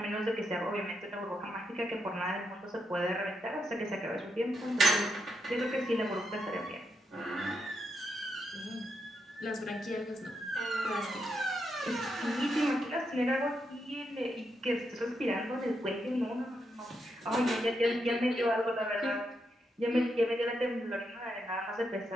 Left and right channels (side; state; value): both; normal; correlation 0.82